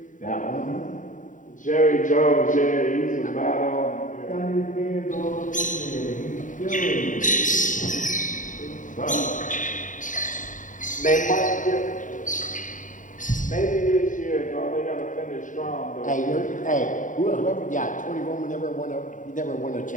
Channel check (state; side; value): late; right; 0.37 ms